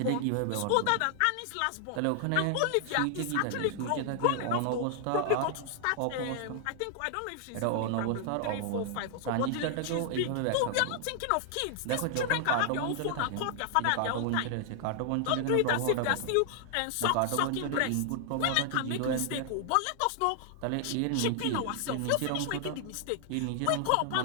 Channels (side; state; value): both; different; correlation 0.00